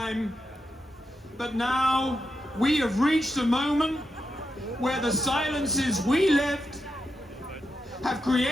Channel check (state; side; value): normal; both; correlation 0.86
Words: But now we have reached a moment where the silences we lived have